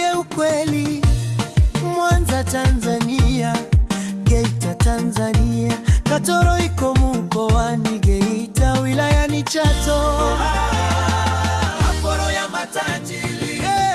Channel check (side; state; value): both; identical; correlation 1.00